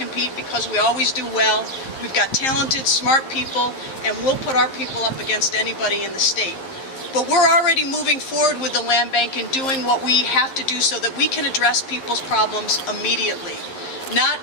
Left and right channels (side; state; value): right; late; 11 ms